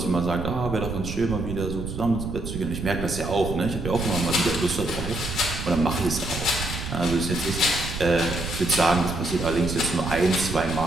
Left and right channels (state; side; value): noise; right; rumble, 6 dB below the sound